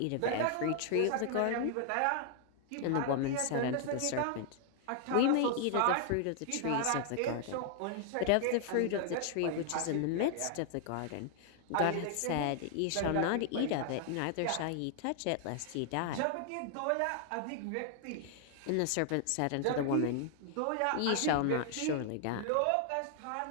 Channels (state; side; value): different; both; correlation 0.00